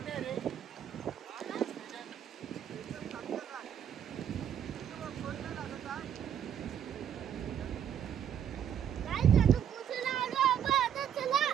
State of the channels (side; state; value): left; quieter; 9.1 dB